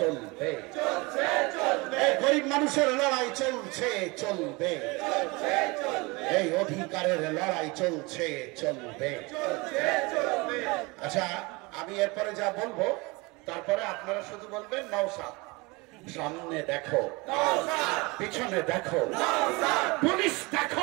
এই গরিব মানুষের লড়াই চলছে চলবে, এই অধিকারের লড়াই চলছে চলবে। আচ্ছা, আমি এরপরে যা বলবো তারপরে আপনারা শুধু বলবেন নওশাদ। সামনে দেখো, পিছনে দেখো, পুলিশ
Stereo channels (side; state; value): left; quieter; 25.6 dB